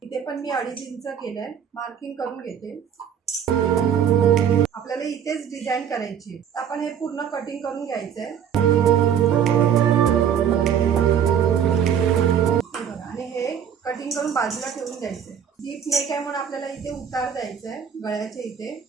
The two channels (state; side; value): quieter; left; 8.5 dB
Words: इथे पण मी 2.5 इंच केलंय, मार्किंग करून घेते। आपल्याला इथेच डिझाइन करायची, आपण हे पूर्ण कटिंग करून घ्यायचंय आणि हे कटिंग करून बाजूला ठेवून द्यायचंय। डीप नेक आहे म्हणून आपल्याला इथे उतार द्यायचंय गळ्याच्या इथे।